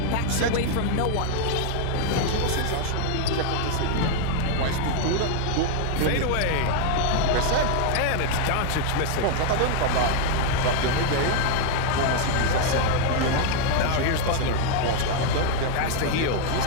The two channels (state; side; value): different; both; correlation 0.00